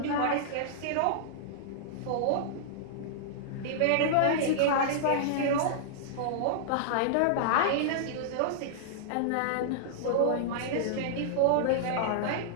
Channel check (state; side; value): different; both; correlation -0.02